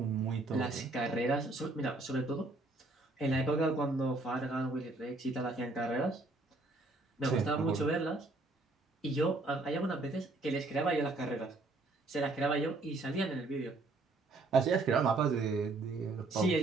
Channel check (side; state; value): left; quieter; 3.1 dB